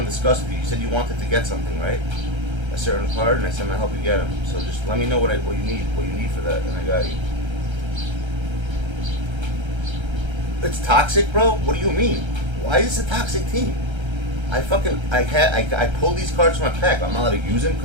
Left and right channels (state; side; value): late; left; 1.3 ms